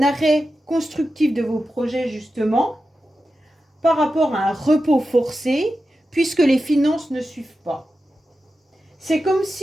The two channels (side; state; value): both; normal; correlation 0.91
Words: arrêt constructif de vos projets justement par rapport à un repos forcé puisque les finances ne suivent pas. C'est comme